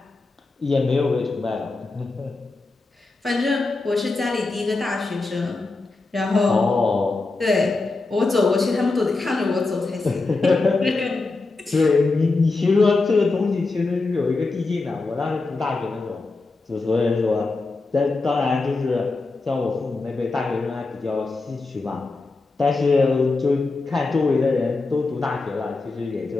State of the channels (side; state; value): right; quieter; 3.6 dB